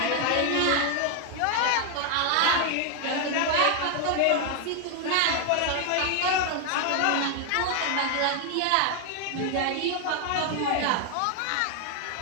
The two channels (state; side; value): different; both; correlation 0.00